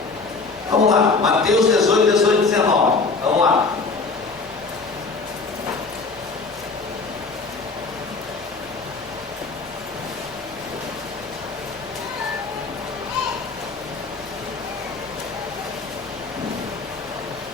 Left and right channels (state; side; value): quieter; right; 4.1 dB